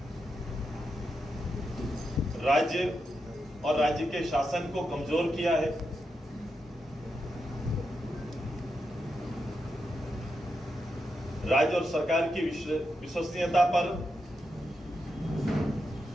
राज्य और राज्य के शासन को कमजोर किया है। राज्य और सरकार की विश्वसनीयता पर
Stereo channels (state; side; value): normal; both; correlation 0.86